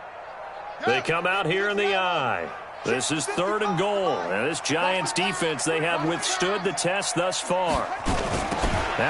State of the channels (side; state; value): both; identical; correlation 1.00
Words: They come out here in the eye. This is 3rd and goal. And this Giants defense, they have withstood the test thus far.